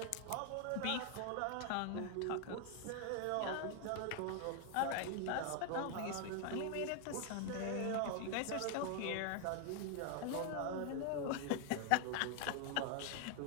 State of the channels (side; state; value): both; different; correlation 0.00